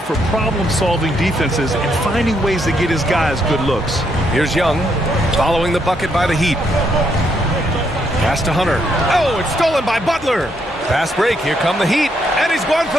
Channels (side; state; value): both; normal; correlation 0.75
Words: for problem-solving defenses and finding ways to get his guys good looks. Here's Young following the bucket by the Heat. Pass to Hunter. Oh, it's stolen by Butler. Fast break. Here come the Heat. And he's going for